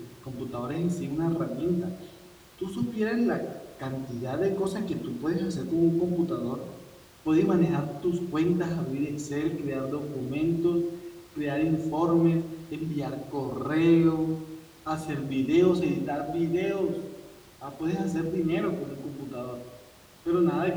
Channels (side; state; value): both; identical; correlation 1.00